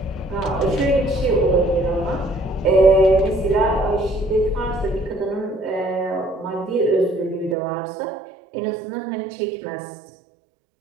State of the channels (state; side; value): drops out; left; at 7.6 s